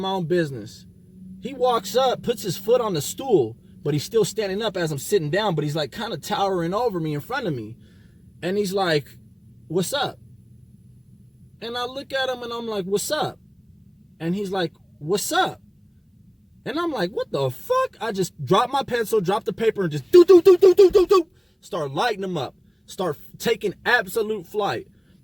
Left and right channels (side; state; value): both; identical; correlation 1.00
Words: own business. He walks up, puts his foot on the stool, but he's still standing up as I'm sitting down, but he's like kind of towering over me in front of me. And he's like, "What's up?" And I look at him and I'm like, "What's up?" And he's like, "What's up?" And I'm like, "What the fuck?" I just dropped my pencil, dropped the paper, and just start lighting him up. Start taking absolute flight.